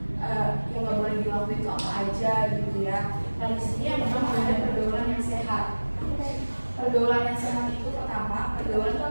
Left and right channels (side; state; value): both; inverted; correlation -1.00